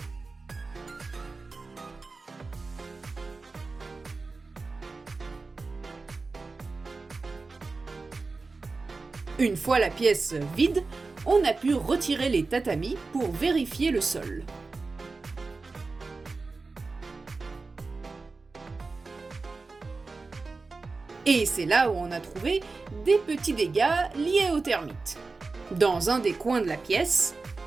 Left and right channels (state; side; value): quieter; left; 3.9 dB